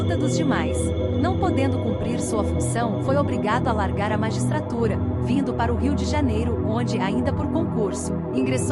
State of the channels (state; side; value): identical; both; correlation 1.00